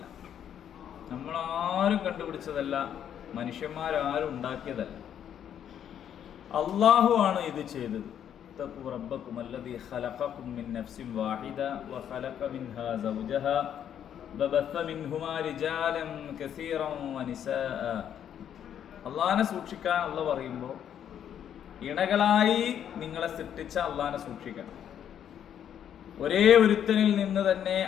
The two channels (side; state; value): right; quieter; 9.4 dB